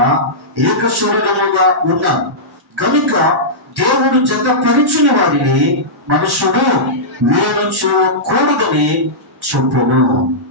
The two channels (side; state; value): both; normal; correlation -0.14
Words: ఏక శరీరముగా ఉన్నారు కనుక దేవుడు జతపరిచిన వారిని మనుషుడు వేరు చేయకూడదని చెప్పాను.